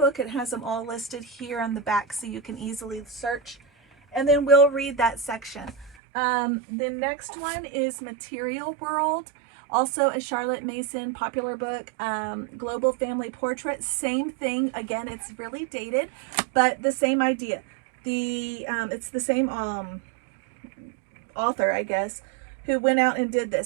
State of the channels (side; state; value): left; drops out; at 6.0 s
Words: It has them all listed here on the back so you can easily search. And then we'll read that section. The next one is Material World, also a Charlotte Mason popular book. Global Family Portrait, same thing. Again, it's really dated, but the same idea. It's the same author, I guess, who went out and did